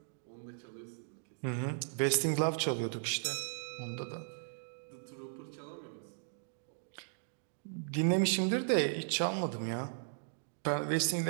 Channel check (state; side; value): silent; left; digital silence